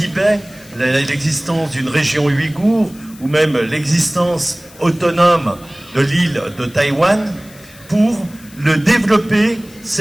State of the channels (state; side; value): noise; left; hiss, 23 dB below the sound